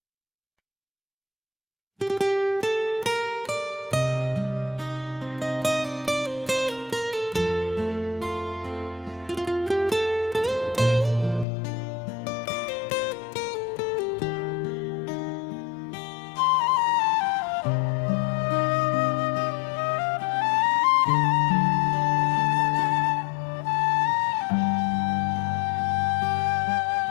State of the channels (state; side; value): drops out; right; at 11.5 s